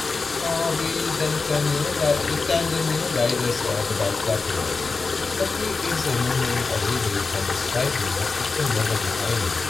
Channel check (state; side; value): quieter; right; 4.2 dB